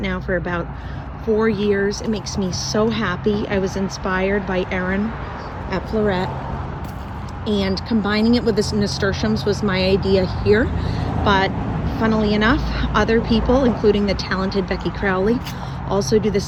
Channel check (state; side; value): identical; both; correlation 1.00